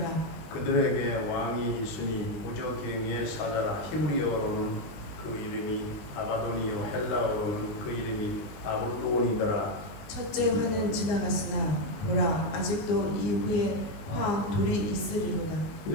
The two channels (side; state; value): right; late; 20 ms